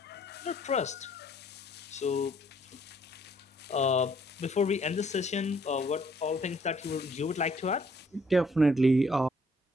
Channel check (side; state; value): both; normal; correlation 0.64